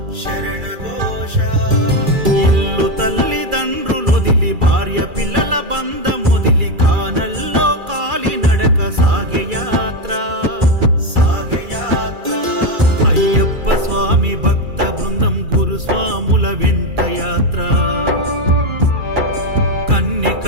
శరణఘోష ఇల్లు తల్లిదండ్రులొదిలి భార్య పిల్లల బంధమొదిలి కానల్లో కాలి నడక సాగే యాత్ర అయ్యప్ప స్వామి భక్త బృందం గురుస్వాముల వెంట యాత్ర కన్నె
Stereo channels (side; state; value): left; late; 2.4 ms